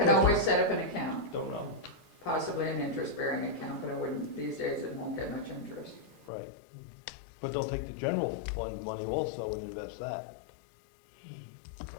always set up an account, Don't know. possibly an interest-bearing account, but I wouldn't, these days it won't get much interest. Right. But they'll take the general fund money also and invest that.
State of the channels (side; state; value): right; drops out; at 6.3 s